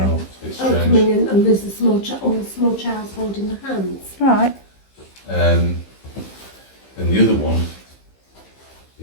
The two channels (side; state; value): right; late; 15 ms